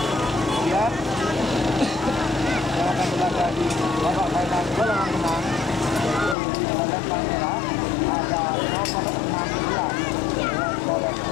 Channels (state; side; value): drops out; right; at 6.4 s